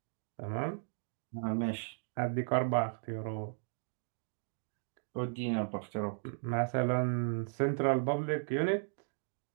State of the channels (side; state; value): left; silent; digital silence